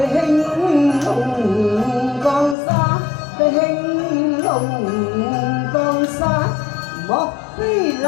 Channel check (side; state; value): right; drops out; at 2.6 s